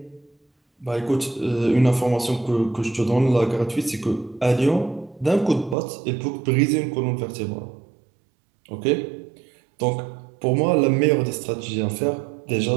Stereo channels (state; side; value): drops out; left; at 5.8 s